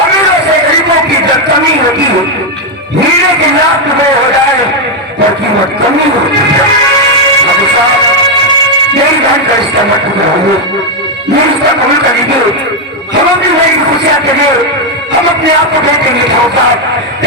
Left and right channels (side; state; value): both; normal; correlation 0.02